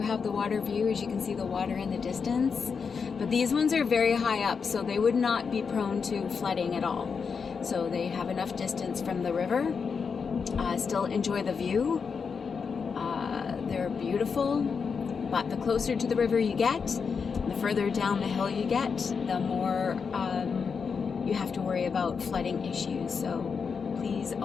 have the water view, as you can see the water in the distance, but these ones are very high up, so they would not be prone to flooding at all. So they have enough distance from the river, still enjoy the view. They're beautiful, but the closer to the river you get, the further down the hill you get, the more you have to worry about flooding issues. So please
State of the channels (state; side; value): quieter; right; 5.7 dB